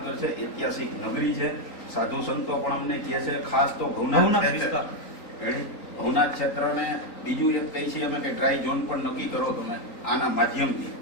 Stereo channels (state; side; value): late; right; 3.9 ms